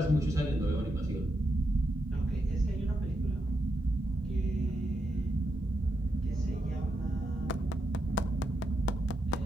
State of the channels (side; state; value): both; normal; correlation 0.84